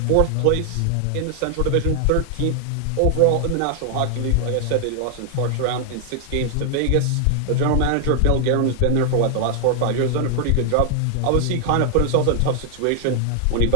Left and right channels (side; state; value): both; different; correlation 0.00